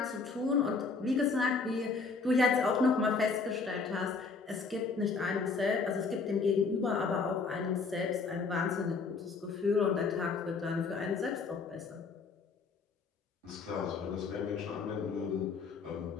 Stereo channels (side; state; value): right; quieter; 4.6 dB